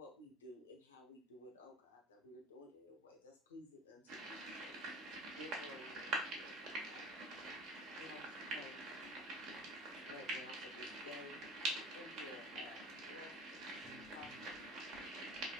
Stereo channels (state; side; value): normal; both; correlation 0.39